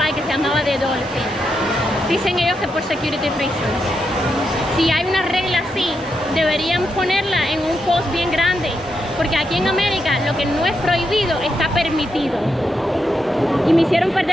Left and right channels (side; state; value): both; normal; correlation 0.83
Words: que se llamaba The Dolphin. Dicen ellos que por security reasons. Si hay una regla así, deberían ponerla en un post bien grande, porque aquí en América lo que no es prohibido está permitido. Y me hicieron